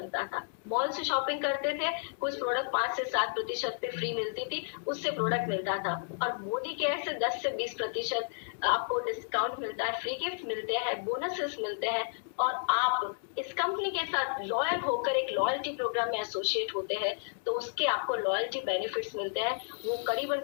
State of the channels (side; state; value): right; silent; digital silence